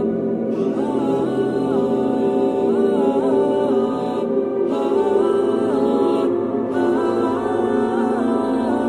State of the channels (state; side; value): identical; both; correlation 1.00